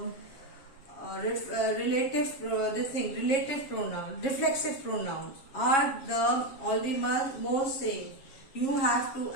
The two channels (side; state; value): right; late; 7.3 ms